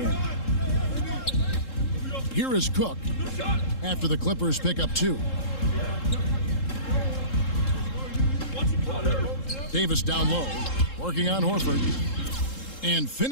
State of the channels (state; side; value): late; right; 3.7 ms